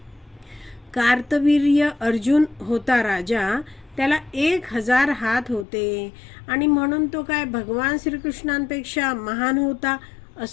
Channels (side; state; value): right; drops out; at 5.7 s